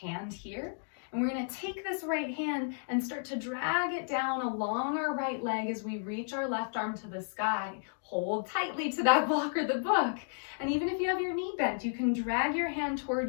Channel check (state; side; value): silent; right; digital silence